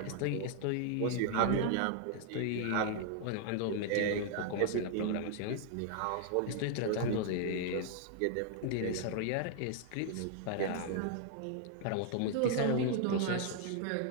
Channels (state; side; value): different; both; correlation 0.00